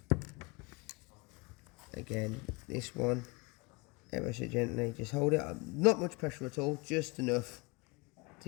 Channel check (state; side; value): quieter; right; 26.6 dB